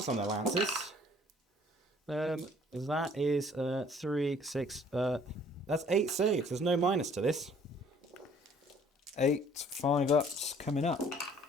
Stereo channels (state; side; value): normal; both; correlation 0.57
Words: on their lances. That is 3, 6. That's 8 saves. There's no minus to this. 8 5-ups coming up.